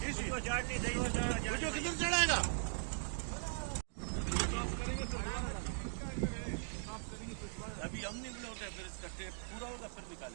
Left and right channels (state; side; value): silent; left; digital silence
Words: कितने चढ़ाएगा। अभी हम निकले होते हैं फिर इसका टेस्ट पूरा होगा फिर